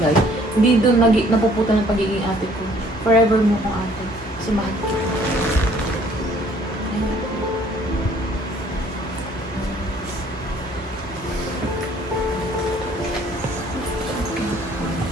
hindi doon napuputa ng pagiging ate ko. Forever mo kong ate. Kasi mahal kita.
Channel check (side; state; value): both; normal; correlation 0.59